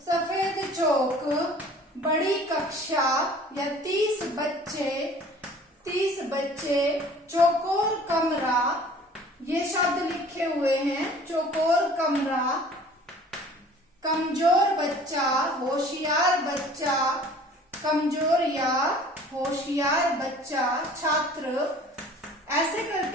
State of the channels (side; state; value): both; normal; correlation 0.49